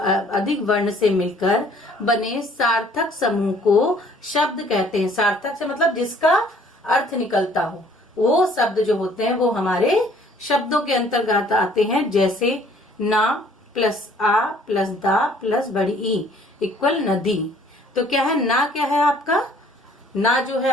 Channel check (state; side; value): normal; both; correlation 0.58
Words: वर्ण से मिलकर बने सार्थक समूह को शब्द कहते हैं। सार्थक से मतलब जिसका अर्थ निकलता हो, वो शब्द जो होते हैं वो हमारे शब्दों के अंतर्गत आते हैं। जैसे ना प्लस आ प्लस दा प्लस बड़ी ई इक्वल नदी। तो क्या है ना, क्या है आपका ना जो है